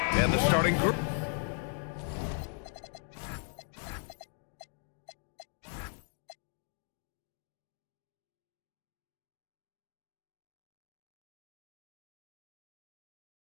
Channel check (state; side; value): silent; right; 52 dB below the other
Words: And the starting group.